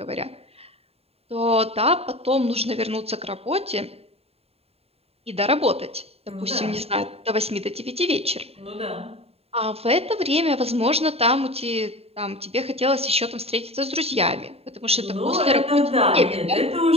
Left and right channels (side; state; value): left; late; 0.29 ms